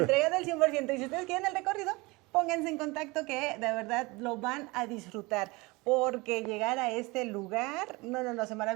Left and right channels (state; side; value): quieter; left; 24.3 dB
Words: del 100%. Y si ustedes quieren el recorrido, pónganse en contacto que de verdad lo van a disfrutar. Porque llegar a este lugar, no, se